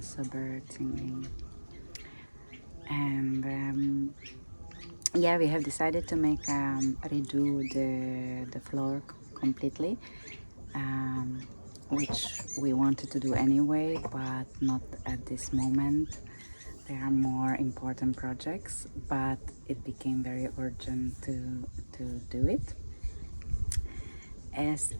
birds singing. And yeah, we have decided to make redo the floor completely, um, which we wanted to do anyway, but not at this moment. There are more important projects, but it became very urgent to do it. As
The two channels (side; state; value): both; inverted; correlation -1.00